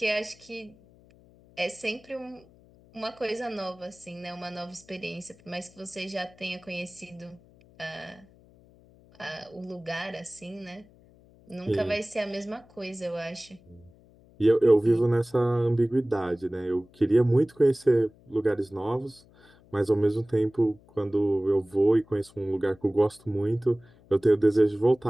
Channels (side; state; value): left; noise; hum, 27 dB below the sound